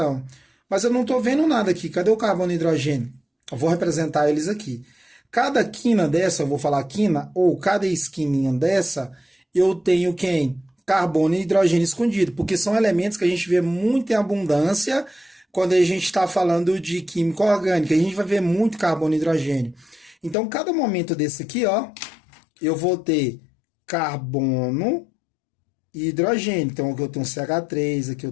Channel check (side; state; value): right; drops out; at 20.4 s